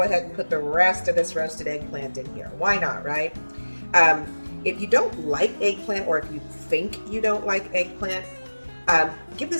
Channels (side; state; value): both; inverted; correlation -1.00